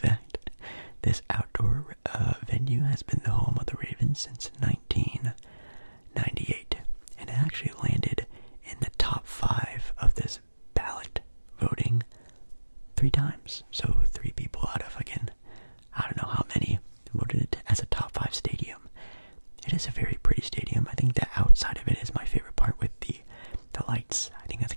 This outdoor venue has been the home of the Ravens since 1998, and it actually landed in the top 5 of this ballot voting 3 times. So 3 people out of, again, I don't know how many voted it as a top 5 stadium. It is a very pretty stadium. I think the outside of it is my favorite part with the lights. I think that's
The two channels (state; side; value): inverted; both; correlation -1.00